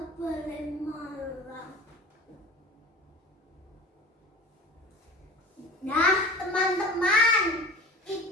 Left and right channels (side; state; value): both; normal; correlation 0.38